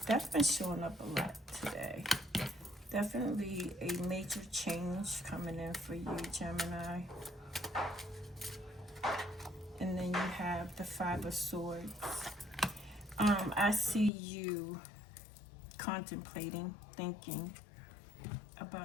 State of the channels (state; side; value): drops out; right; at 14.1 s